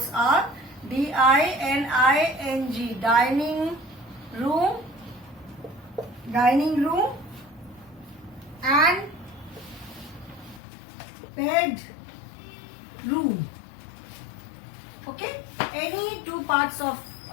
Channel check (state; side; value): drops out; right; at 10.6 s